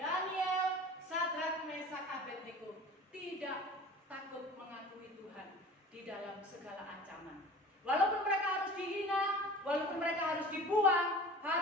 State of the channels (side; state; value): both; normal; correlation 0.41